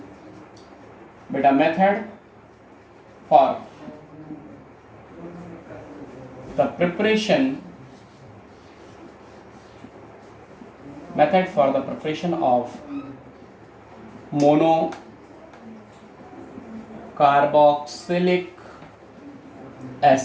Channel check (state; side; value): identical; both; correlation 1.00